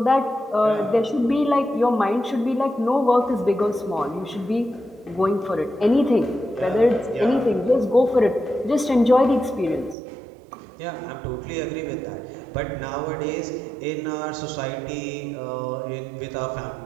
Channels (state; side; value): drops out; left; at 10.0 s